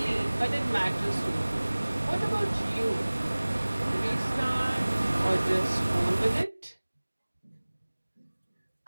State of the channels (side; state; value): both; inverted; correlation -1.00